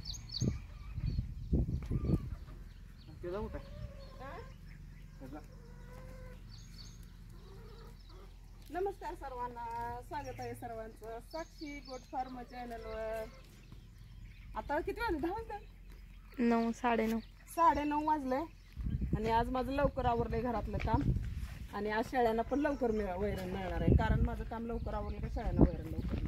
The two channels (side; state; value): both; identical; correlation 1.00